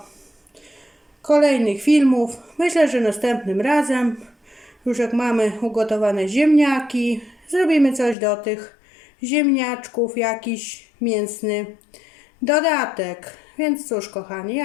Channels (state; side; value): drops out; right; at 8.2 s